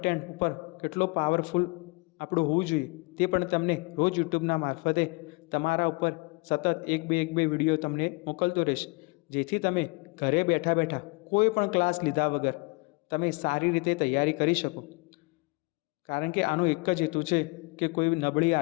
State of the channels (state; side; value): quieter; right; 28.5 dB